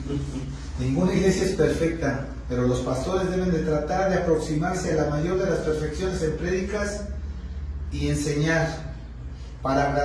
Ninguna iglesia es perfecta, pero los pastores deben de tratar de aproximarse a la mayor de las perfecciones en prédicas y enseñar para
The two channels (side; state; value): both; identical; correlation 1.00